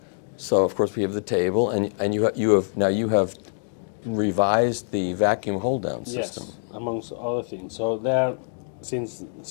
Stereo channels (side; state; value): right; silent; digital silence